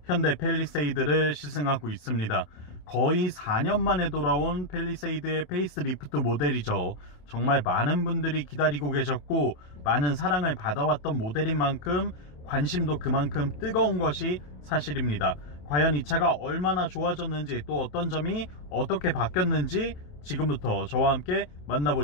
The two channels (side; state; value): right; late; 28 ms